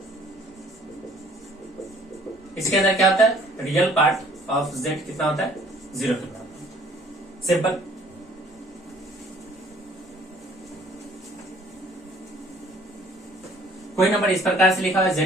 इसके अंदर क्या होता है? रियल पार्ट ऑफ जेड कितना होता है? 0 कितना होता है। सिंपल। कोई नंबर इस प्रकार से लिखा हुआ है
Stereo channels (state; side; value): normal; both; correlation 0.57